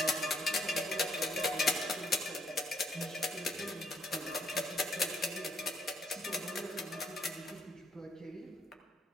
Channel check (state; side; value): normal; both; correlation 0.68